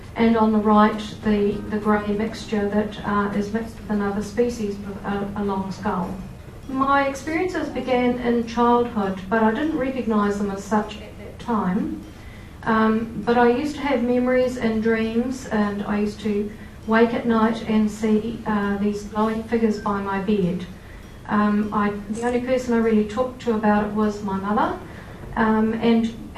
And on the right, the grey mixture that is mixed with another species with a long skull. My experiences began in childhood, but I didn't recognise them as such at that time. But I used to have memories and dreams, and I used to wake at night and see these glowing figures by my bed. The only person I really talked to about it was my mother, and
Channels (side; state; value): both; identical; correlation 1.00